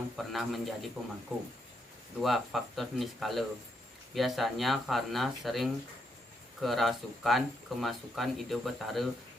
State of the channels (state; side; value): normal; both; correlation 0.78